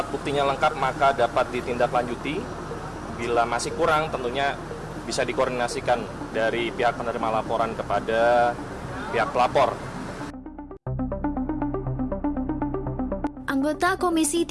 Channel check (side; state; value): both; identical; correlation 1.00